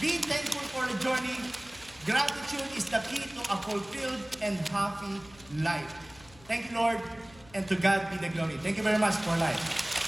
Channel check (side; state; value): left; noise; hum, 24 dB below the sound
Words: be thankful for the journey. Gratitude is the key to a fulfilled and happy life. Thank you, Lord, and to God be the glory. Thank you very much for life.